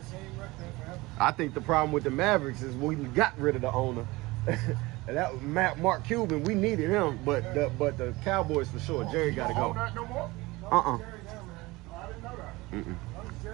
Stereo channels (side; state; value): left; quieter; 21.5 dB